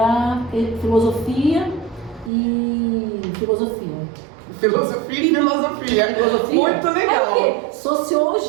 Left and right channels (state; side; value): drops out; left; at 2.3 s